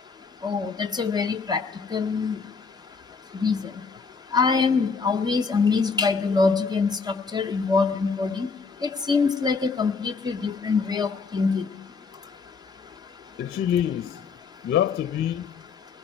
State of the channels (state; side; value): quieter; right; 5.0 dB